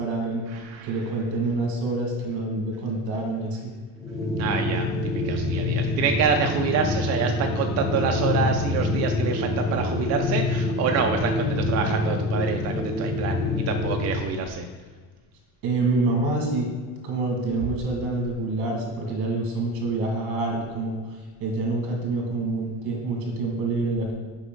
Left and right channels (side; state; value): both; normal; correlation 0.28